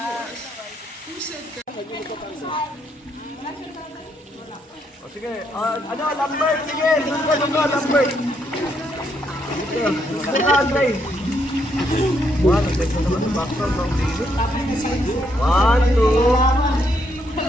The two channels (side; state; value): both; normal; correlation 0.75